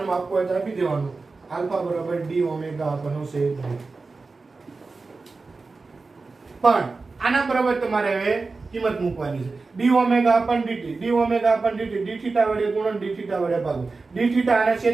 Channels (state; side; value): quieter; left; 4.0 dB